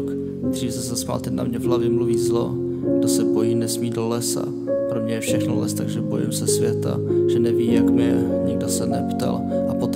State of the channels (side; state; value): both; identical; correlation 1.00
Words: Dřív se zasmál, teď na mě v hlavě mluví zlo. Kdo se bojí, nesmí do lesa. Pro mě je všechno les, takže bojím se světa. Že neví, jak mi je, nikdo se neptal. A